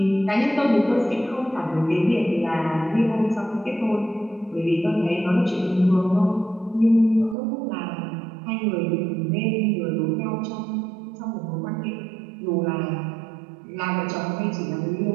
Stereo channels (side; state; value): left; drops out; at 7.4 s